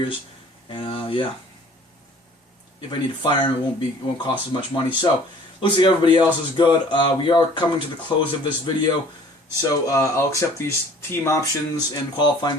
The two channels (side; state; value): both; normal; correlation 0.52